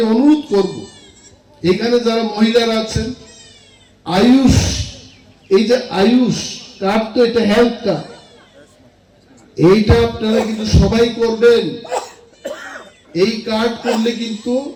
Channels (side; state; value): both; identical; correlation 1.00